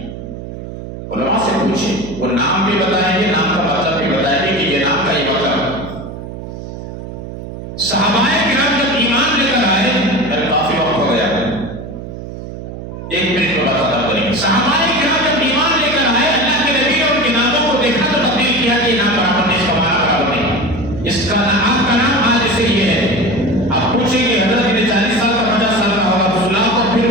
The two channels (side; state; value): right; noise; hum, 10 dB below the sound